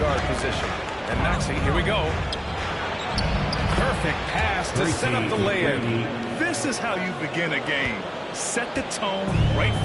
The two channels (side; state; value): both; identical; correlation 1.00